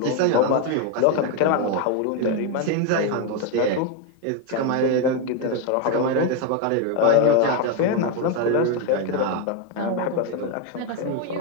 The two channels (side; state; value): both; different; correlation 0.02